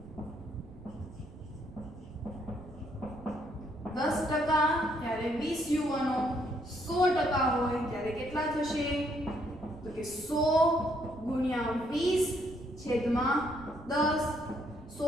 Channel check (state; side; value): noise; right; rumble, 18 dB below the sound